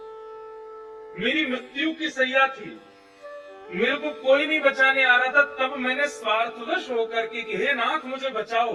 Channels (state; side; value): identical; both; correlation 1.00